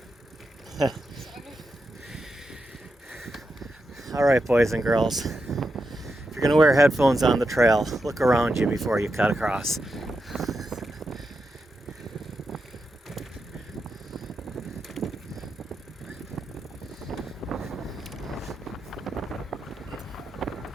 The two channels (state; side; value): normal; both; correlation 0.87